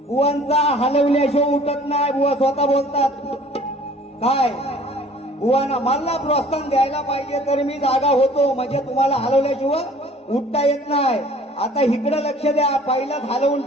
बुवांचा हलवल्याशिवाय उठत नाही. बुवा स्वतः बोलतात. काय बुवांना मला प्रोत्साहन द्यायला पाहिजे तर मी जागा होतो, म्हणजे तुम्हाला हलवल्याशिवाय उठता येत नाही. आता इकडे लक्ष द्या, पहिलाच हलवून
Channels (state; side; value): normal; both; correlation 0.51